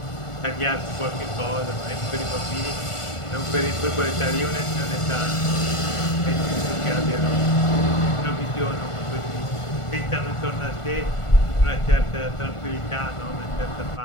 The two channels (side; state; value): right; late; 1.5 ms